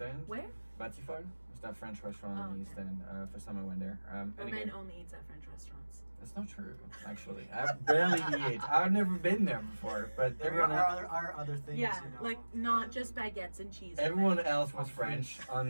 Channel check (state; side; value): inverted; both; correlation -1.00